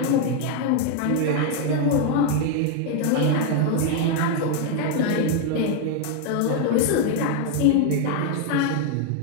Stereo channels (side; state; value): both; different; correlation 0.01